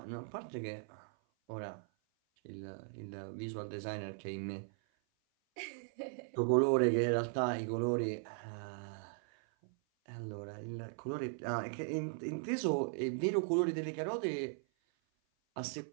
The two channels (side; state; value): left; silent; 52 dB below the other